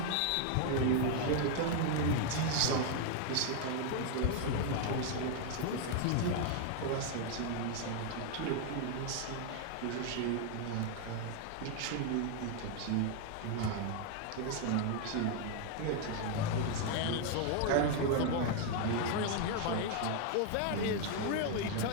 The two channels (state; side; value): different; both; correlation 0.00